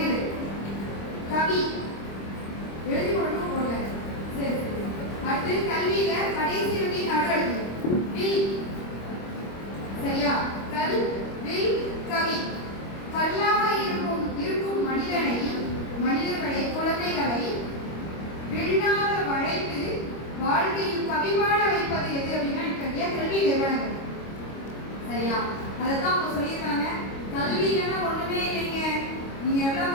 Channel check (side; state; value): right; late; 25 ms